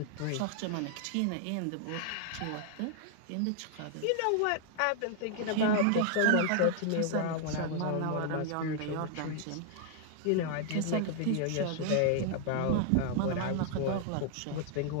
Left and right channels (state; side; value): different; both; correlation 0.00